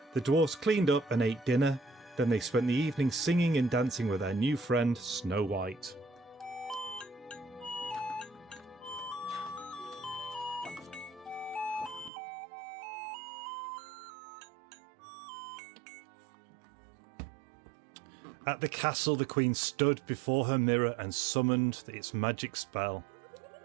The dwarfs cleaned up and ate dinner. Then they spent the evening singing and dancing with their new friend Snow White. At the castle, the queen stood before her mirror and summoned its magic spell.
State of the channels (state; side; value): drops out; left; at 12.1 s